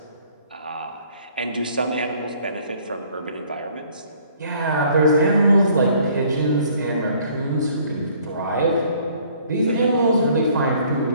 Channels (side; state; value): both; inverted; correlation -0.59